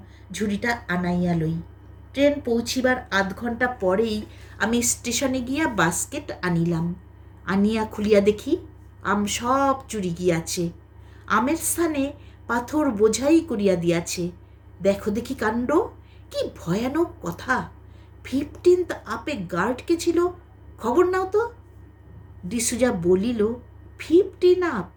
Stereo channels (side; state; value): both; identical; correlation 1.00